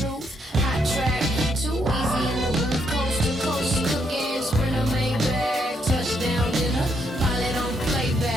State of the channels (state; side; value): normal; both; correlation 0.75